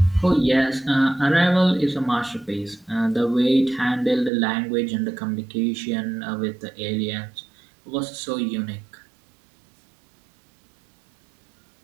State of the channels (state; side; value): drops out; left; at 4.3 s